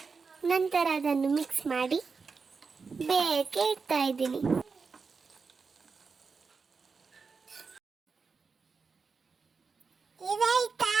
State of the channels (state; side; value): quieter; left; 4.9 dB